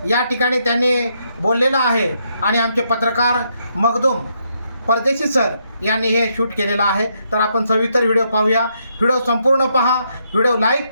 या ठिकाणी त्यांनी बोललेलं आहे आणि आमचे पत्रकार मखदूम परदेशी सर यांनी हे शूट केलेलं आहे। तर आपण सविस्तर व्हिडिओ पाहूया। व्हिडिओ संपूर्ण पहा, व्हिडिओ लाईक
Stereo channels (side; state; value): both; inverted; correlation -0.77